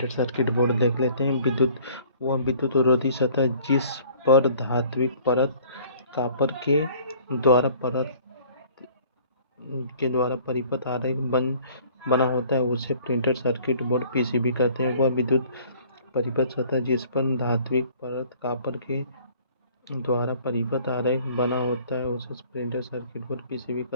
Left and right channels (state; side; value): inverted; both; correlation -0.54